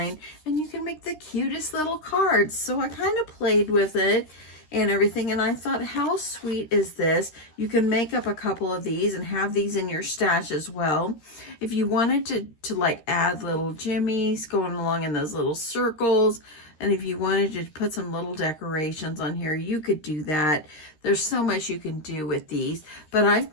and you can make the cutest little cards. So I kind of played with it and everything, and I thought, how sweet is this? You can make up a couple of these and have these in your stash as well. If you wanted to like add little jimmies going along in those little circles, and if you wanted to put some little decorations on here, you could do that. There's so much you can do with these. But I've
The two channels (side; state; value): right; late; 13 ms